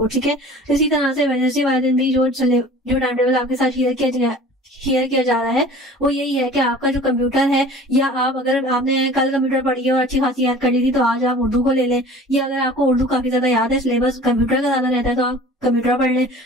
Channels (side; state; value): both; normal; correlation 0.44